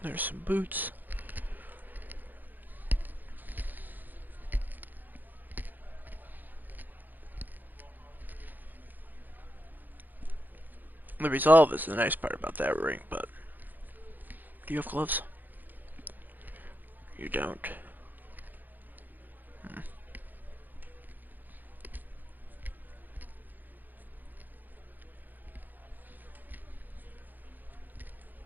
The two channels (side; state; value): left; late; 0.086 ms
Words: There's some boots. The resolve is the nice part about that ring, but do you have gloves? You don't.